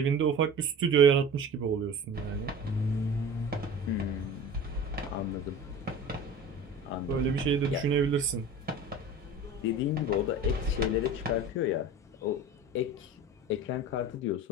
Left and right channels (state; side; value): normal; both; correlation 0.36